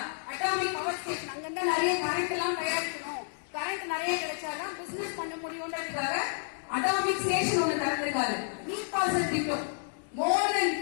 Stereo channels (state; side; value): silent; right; digital silence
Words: அட்டாமிக் பவர் ஸ்டேஷன், அங்கிருந்தா நிறைய கரண்ட் எல்லாம் தயாரிக்கணும், கரண்ட் நிறைய கிடைச்சாதான் பிசினஸ் பண்ண முடியும்ன்றதுக்காக அட்டாமிக் ஸ்டேஷன் ஒண்ணு திறந்திருக்காரு. நீர் பாசன திட்டம் மோர் தென்